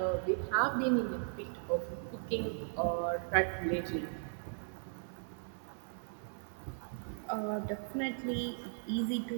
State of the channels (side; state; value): left; silent; digital silence